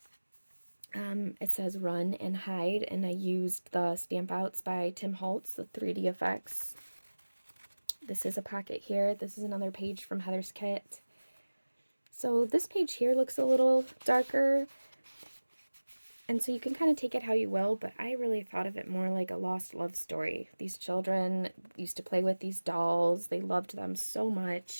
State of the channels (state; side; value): inverted; both; correlation -1.00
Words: It says run and hide, and I used the stamp outs by TimHoltz, the 3D effects. This is a pocket here. This is another page from Heather's kit. So this page here looks a little darker. And so you can kind of take it how you will, but I really thought of it more like a lost love story. These children used to play with these dolls. They loved them so